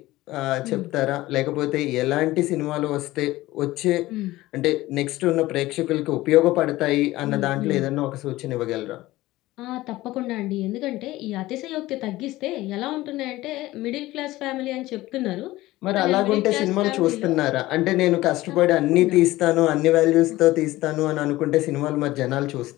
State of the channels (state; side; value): quieter; right; 17.6 dB